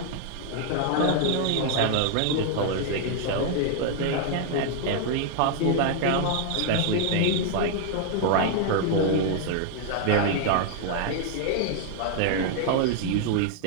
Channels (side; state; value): both; different; correlation 0.00